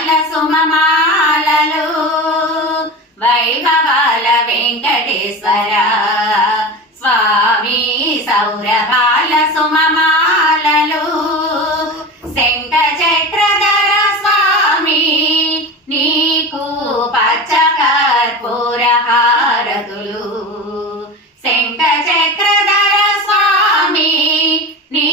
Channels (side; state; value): both; normal; correlation 0.28